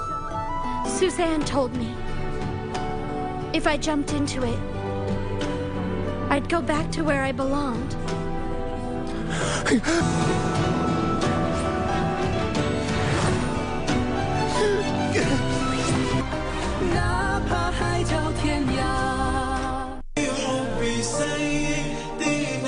Suzanne told me if I jumped into it, I'd go back to where I belonged.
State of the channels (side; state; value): both; identical; correlation 1.00